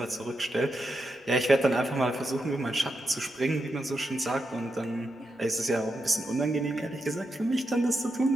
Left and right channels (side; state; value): both; normal; correlation 0.86